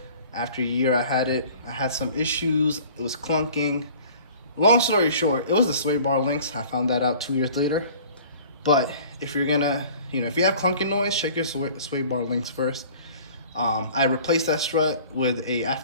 After a year I had some issues. It was clunking. Long story short, it was the sway bar links. I found that out 2 years later. But if you're gonna, if you have clunky noise, check your sway bar links first. I replaced that strut with a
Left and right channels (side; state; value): both; inverted; correlation -0.47